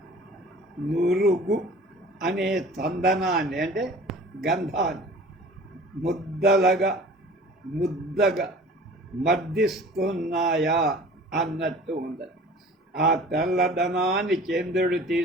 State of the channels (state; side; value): normal; both; correlation 0.45